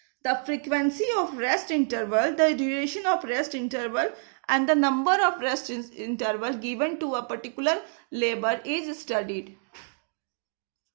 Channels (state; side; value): silent; left; 60 dB below the other